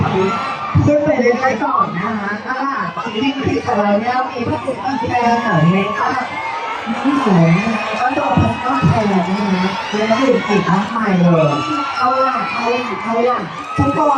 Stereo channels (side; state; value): both; identical; correlation 1.00